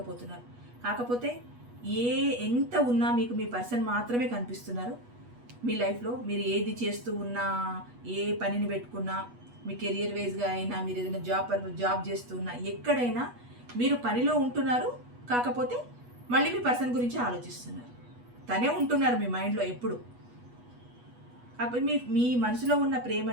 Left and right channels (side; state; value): left; late; 8.2 ms